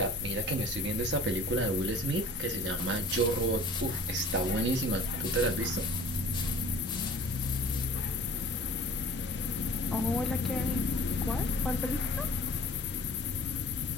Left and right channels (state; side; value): normal; both; correlation 0.46